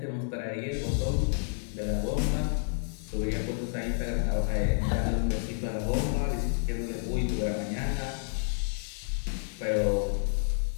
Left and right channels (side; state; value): right; silent; digital silence